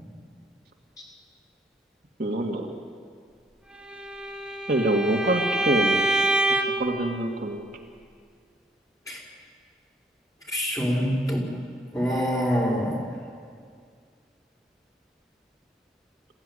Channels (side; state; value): both; normal; correlation 0.66